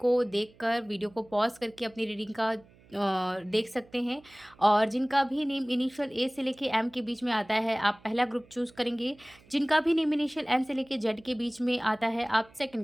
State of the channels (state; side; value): noise; right; hum, 27 dB below the sound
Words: देखकर वीडियो को पॉज करके अपनी रीडिंग का देख सकते हैं। और जिनका भी नेम इनिशियल ए से लेके एम के बीच में आता है, आप पहला ग्रुप चूज़ करेंगे। जिनका भी नेम इनिशियल एन से लेके जेड के बीच में आता है, आप